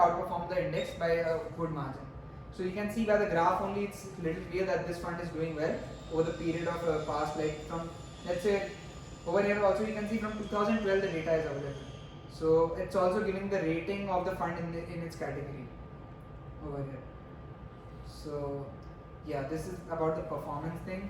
the index by a good margin. So you can see by the graph only, it's little clear that this fund is doing well over the period of past, like from, let's say, over here also you can see from 2012 the data is available. So it's also giving the rating of the fund in its category over here. So yeah, this is about the performance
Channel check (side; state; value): both; identical; correlation 1.00